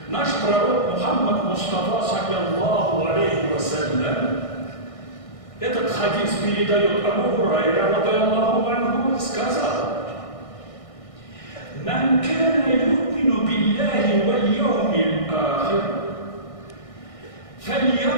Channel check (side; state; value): right; late; 1.6 ms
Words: наш пророк Мухаммад Мустафа, саллаллаху алейхи вассалям, этот хадис передает Абу Хурайра, радиаллаху анху, сказал: «Ман кана ю'мину биллахи валь яумил ахир,